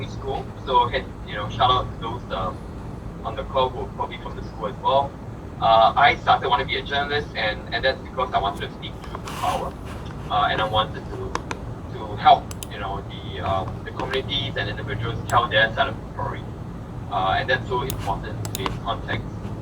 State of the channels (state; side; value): identical; both; correlation 1.00